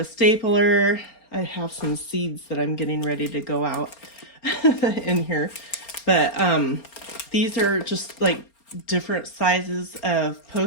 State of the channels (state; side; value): late; right; 4.3 ms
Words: stapler. I have some seeds that I'm getting ready to go out in here. But these are just like different sizes of